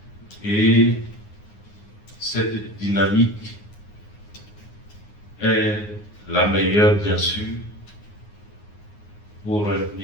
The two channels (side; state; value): right; late; 9.6 ms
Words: Et cette dynamique est la meilleure bien sûr pour un